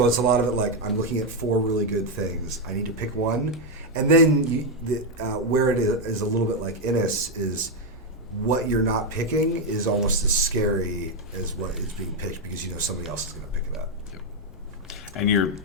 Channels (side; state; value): both; normal; correlation 0.03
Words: it's a lot of it like I'm looking at 4 really good things. I need to pick one, and then where it is a little bit like Innis is what you're not picking is almost as scary as what is being picked because you know somebody else is going to pick it up. And